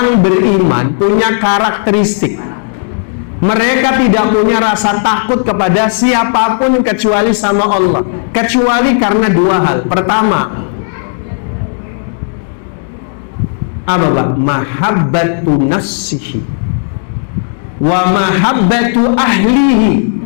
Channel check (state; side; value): silent; right; digital silence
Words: beriman punya karakteristik. Mereka tidak punya rasa takut kepada siapapun kecuali sama Allah. Kecuali karena dua hal. Pertama, apa Pak? Mahabbatu nafsihi wa mahabbatu ahlihi